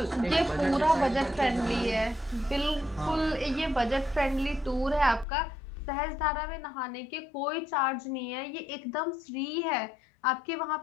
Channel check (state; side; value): drops out; right; at 5.2 s